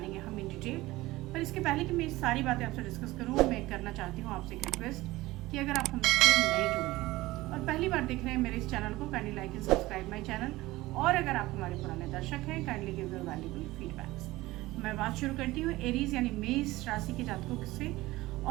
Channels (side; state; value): left; quieter; 18.7 dB